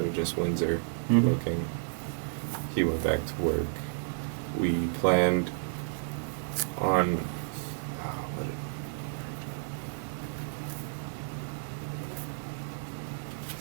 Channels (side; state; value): left; silent; digital silence